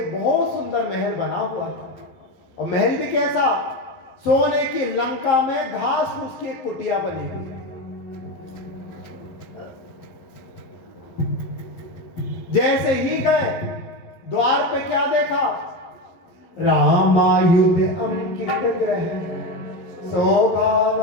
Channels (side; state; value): right; late; 11 ms